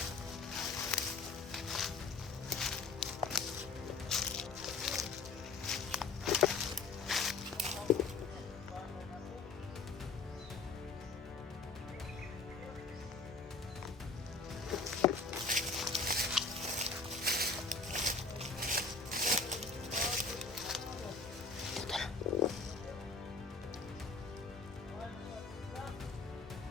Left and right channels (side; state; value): right; quieter; 4.0 dB